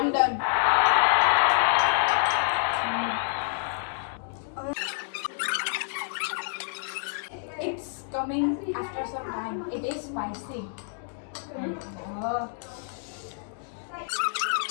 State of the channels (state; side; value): silent; right; digital silence